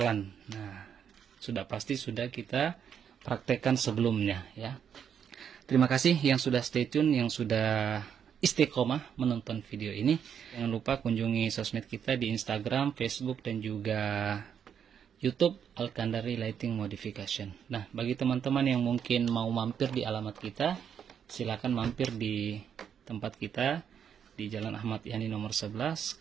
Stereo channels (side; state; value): left; quieter; 8.1 dB